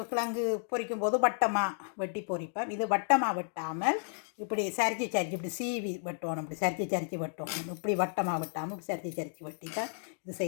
கிழங்கு பொரிக்கும் போது வட்டமாக வெட்டி பொரிப்போம். இது வட்டமாக வெட்டாமல் இப்படி சரிச்சு இப்படி சீவி வெட்டணும், இப்படி சரிச்சு வெட்டணும். இப்படி வட்டமாக வெட்டாமல் இப்படி சரிச்சு வெட்டி தான் இது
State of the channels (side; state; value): right; silent; digital silence